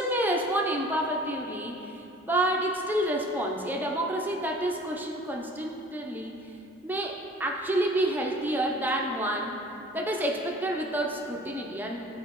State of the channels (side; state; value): both; normal; correlation 0.47